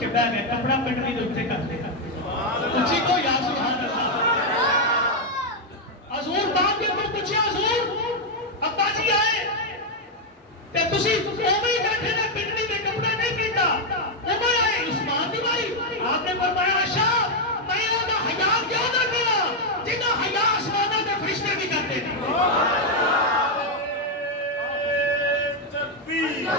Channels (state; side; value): normal; both; correlation 0.01